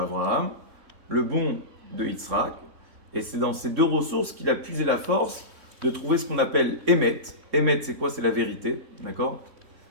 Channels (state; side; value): late; left; 3.5 ms